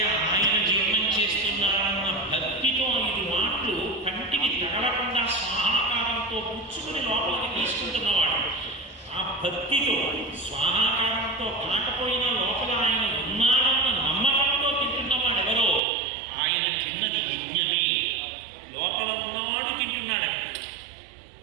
ఆయన జీవనం చేస్తున్నారన్న భక్తితో 5 మాటలు కంటికి తగలకుండా స్వాహాకారంతో పుచ్చుకుని లోపలికి తీసుకుంటున్నవాడు. ఆ భక్తితో స్వాహాకారంతో కాకపోయినా లోపల ఆయన ఉన్నాడన్న నమ్మకంతో తింటున్నవాడు ఎవరో ఆయన తిన్నది యజ్ఞమే. లోపల ఉన్నవాడు తింటున్నాడు.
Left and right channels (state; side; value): drops out; left; at 15.8 s